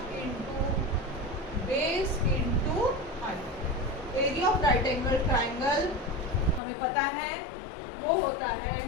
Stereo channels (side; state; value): right; drops out; at 6.6 s